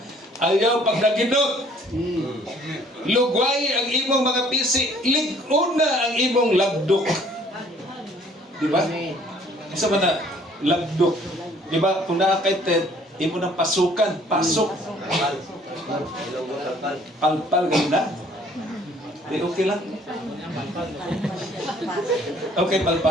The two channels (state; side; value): normal; both; correlation 0.58